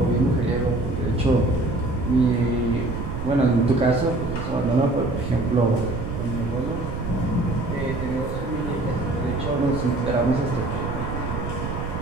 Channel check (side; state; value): right; noise; rumble, 5 dB below the sound